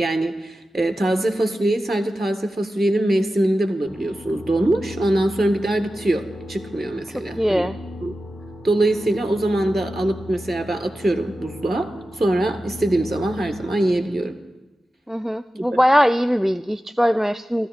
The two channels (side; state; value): both; normal; correlation 0.93